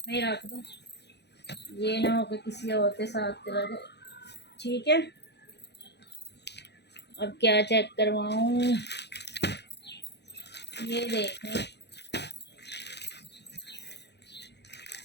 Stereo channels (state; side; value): late; right; 0.49 ms